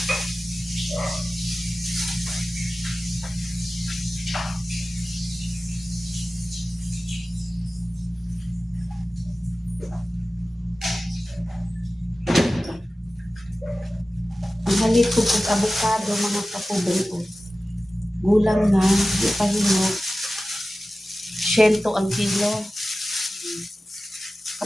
halit ko kung avocado mga kapobre ko. Gulang na, di pa hinog. 100 ang kilo.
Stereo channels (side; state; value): both; normal; correlation 0.95